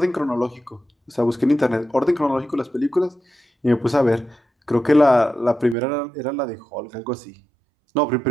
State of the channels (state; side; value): drops out; left; at 5.8 s